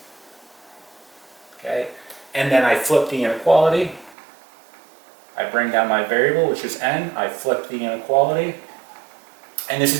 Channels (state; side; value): drops out; left; at 4.2 s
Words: Okay? And then I flip the inequality. I bring down my variable, which is n. I flip the inequality. And this